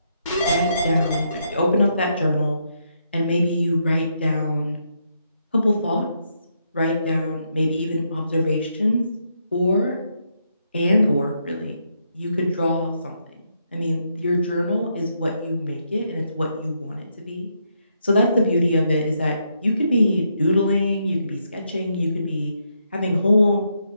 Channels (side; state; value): both; inverted; correlation -0.79